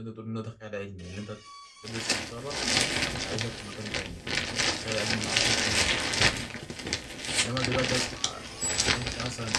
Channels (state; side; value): identical; both; correlation 1.00